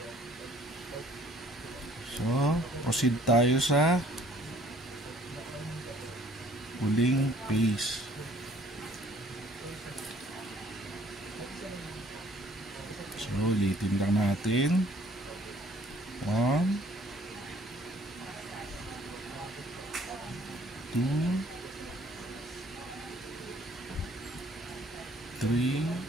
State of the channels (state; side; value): normal; both; correlation 0.58